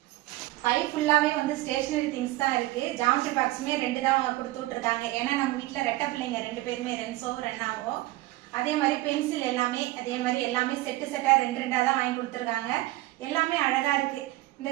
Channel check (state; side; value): quieter; left; 18.2 dB